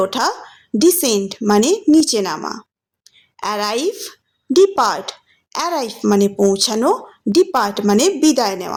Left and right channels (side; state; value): both; identical; correlation 1.00